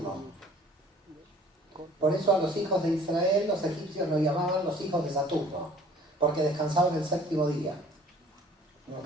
Por eso a los hijos de Israel, los egipcios lo llamaban los hijos de Saturno, porque descansaban el séptimo día.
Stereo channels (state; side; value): normal; both; correlation 0.51